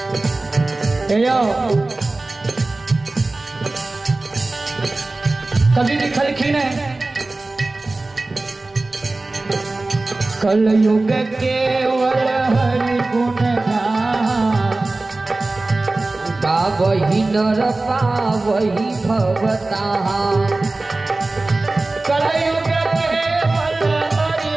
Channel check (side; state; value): left; quieter; 3.1 dB